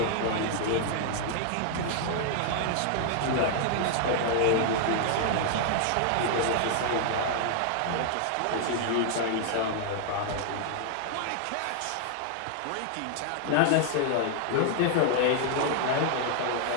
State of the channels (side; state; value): both; different; correlation 0.00